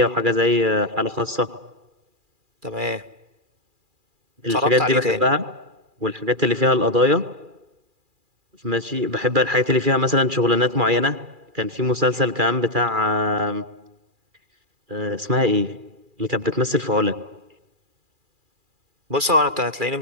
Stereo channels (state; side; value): late; left; 2.4 ms